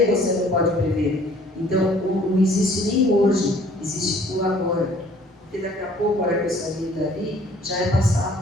você não pode prever. Então, não existe nem hoje, existe o agora. Porque daqui a pouco, a hora que eu sair dali, já é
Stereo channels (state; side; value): normal; both; correlation 0.56